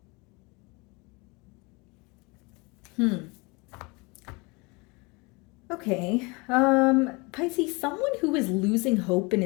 Okay, Pisces, someone who is losing hope in a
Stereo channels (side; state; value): right; quieter; 27.3 dB